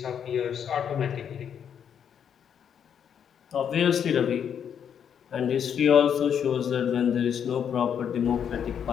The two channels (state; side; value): quieter; right; 8.2 dB